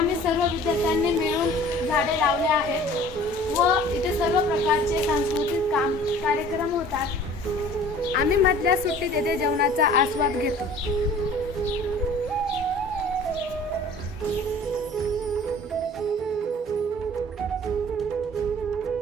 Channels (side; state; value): both; normal; correlation 0.47